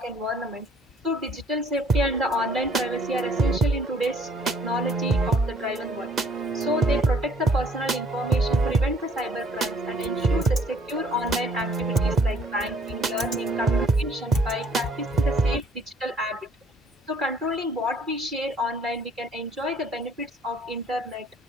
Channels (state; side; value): normal; both; correlation 0.60